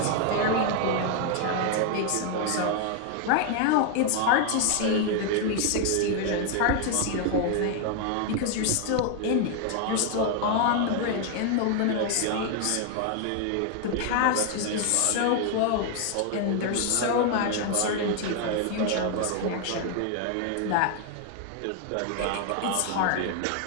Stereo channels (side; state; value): both; different; correlation 0.00